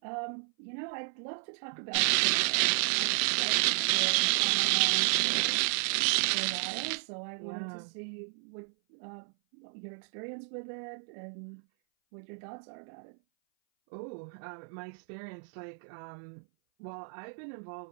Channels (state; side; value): silent; left; 56 dB below the other